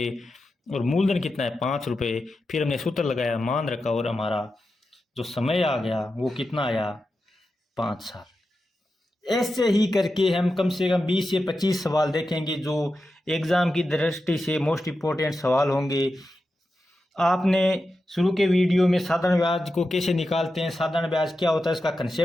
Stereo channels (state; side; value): normal; both; correlation 0.90